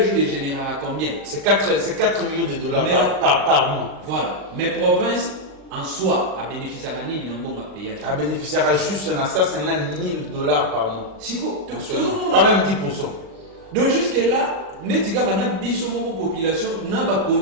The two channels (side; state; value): left; late; 38 ms